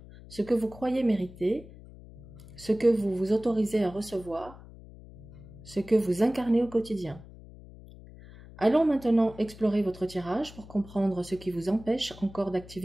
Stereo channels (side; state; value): left; noise; hum, 18 dB below the sound